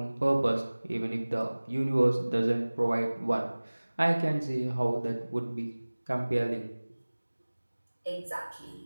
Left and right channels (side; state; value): both; inverted; correlation -1.00